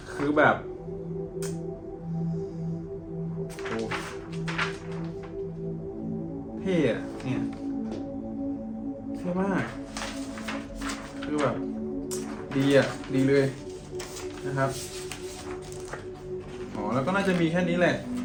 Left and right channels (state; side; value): identical; both; correlation 1.00